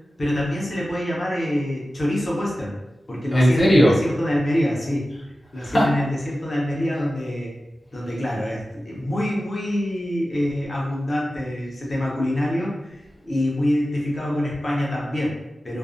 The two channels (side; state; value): both; normal; correlation 0.94